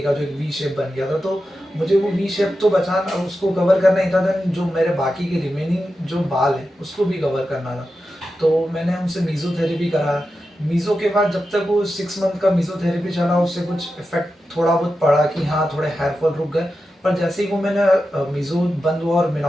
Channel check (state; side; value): normal; both; correlation 0.91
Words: का जो एक वी शेप बन गया था, तो मुझे वो वी शेप तो बचाना, उसको कवर करना ही था। देन जो मेरे बाकी के रिमेनिंग जो बाल है उसको भी कवर करना था। तो मैंने उनसे मीज़ोथेरेपी करा। मीज़ो के बाद जब तक वो 6 मंथ का मीज़ोथेरेपी चला, उससे कुछ इफेक्ट थोड़ा बहुत पड़ा कि हाँ थोड़े हेयर फॉल रुक गए। पर जैसे ही वो मैंने मीज़ो बंद हुआ और